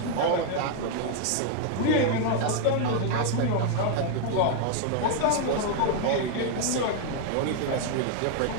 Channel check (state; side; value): different; both; correlation 0.00